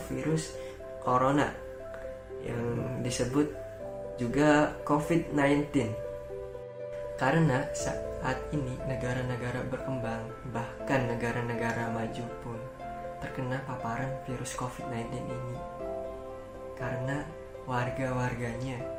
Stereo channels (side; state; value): both; identical; correlation 1.00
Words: virus corona yang disebut juga COVID-19. Karena saat ini negara-negara berkembang, bahkan negara-negara maju pun terkena paparan virus COVID-19 ini. Karena warga-warganya,